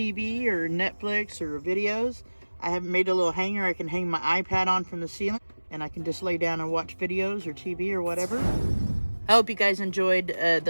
or Netflix or videos, I have made a little hanger I can hang my iPad on from the ceiling, and I can just lay down and watch videos or TV or whatever. I hope you guys enjoyed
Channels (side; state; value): both; inverted; correlation -1.00